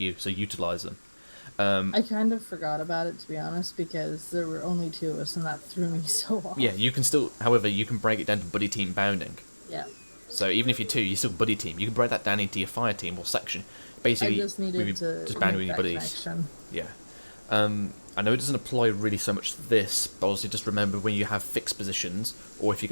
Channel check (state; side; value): inverted; both; correlation -1.00